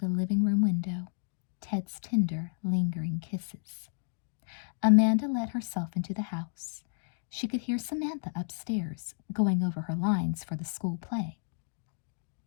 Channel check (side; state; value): right; silent; digital silence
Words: living room window, Ted's tender, lingering kisses. Amanda let herself into the house. She could hear Samantha upstairs, going over her lines for the school play.